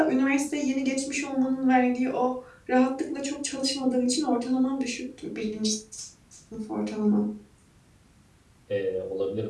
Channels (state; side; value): identical; both; correlation 1.00